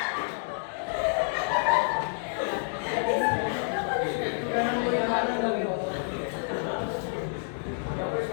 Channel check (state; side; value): silent; right; digital silence